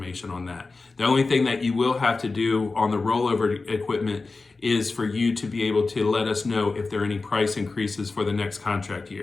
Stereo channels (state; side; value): quieter; right; 3.8 dB